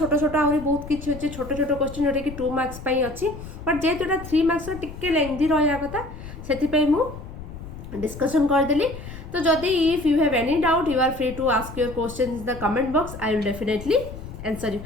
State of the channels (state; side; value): noise; left; rumble, 12 dB below the sound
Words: छोट आहुरी बहुत किछि अछि छोट छोट क्वेश्चन जोटा कि 2 मार्क्स पई अछि बट जे जोटा 3 मार्क्स रो टिके लेंथी रहया कथा सेति पई मु डिस्कशन कर देली तो जदि if you have any doubt you are free to ask your question in the comment box I will definitely answer you